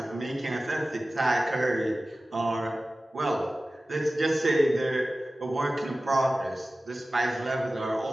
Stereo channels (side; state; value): both; normal; correlation 0.96